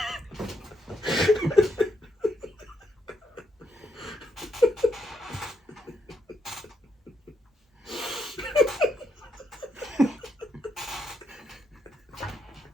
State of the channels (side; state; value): both; normal; correlation 0.78